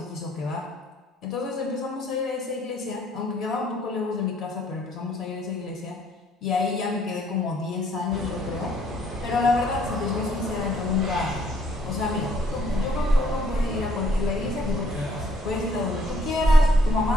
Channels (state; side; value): normal; both; correlation 0.64